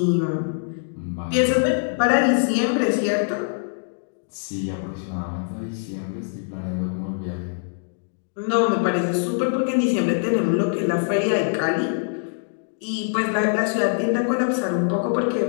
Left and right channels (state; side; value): silent; right; digital silence